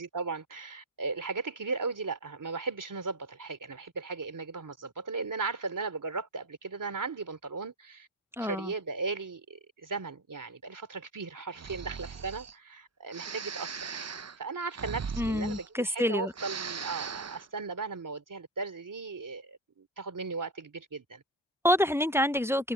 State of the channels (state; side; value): normal; both; correlation 0.18